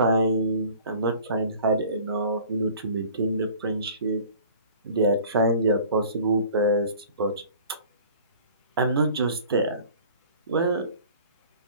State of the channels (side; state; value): both; inverted; correlation -0.47